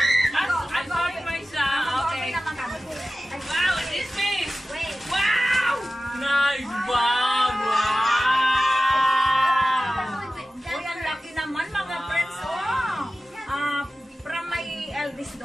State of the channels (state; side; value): normal; both; correlation 0.95